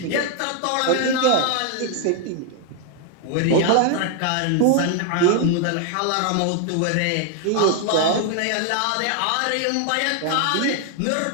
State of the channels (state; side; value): different; both; correlation 0.00